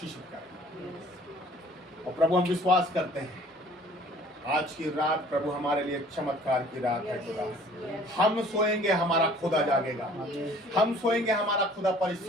करें। और प्रभु, हम विश्वास करते हैं आज की रात प्रभु हमारे लिए चमत्कार की रात है खुदा। हम सोएंगे, हमारा खुदा जागेगा। हम सोएंगे, हमारा खुदा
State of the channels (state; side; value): normal; both; correlation 0.53